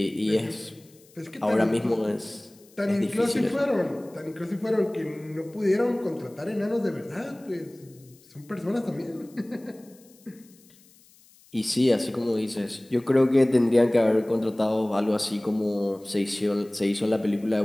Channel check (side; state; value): left; noise; hiss, 28 dB below the sound